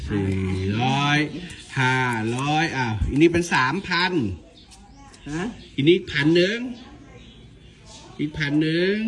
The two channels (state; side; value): identical; both; correlation 1.00